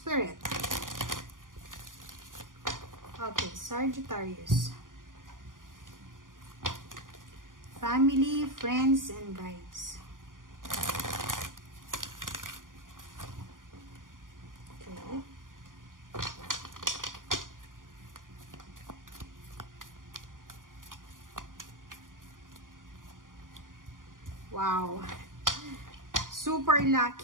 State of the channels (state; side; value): late; left; 0.89 ms